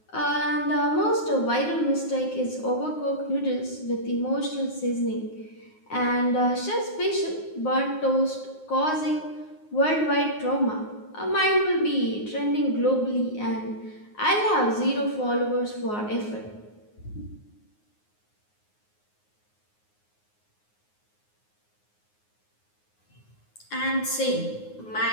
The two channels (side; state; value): right; late; 9.5 ms